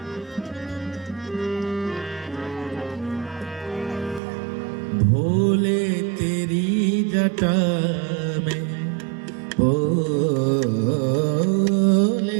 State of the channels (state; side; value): drops out; left; at 4.2 s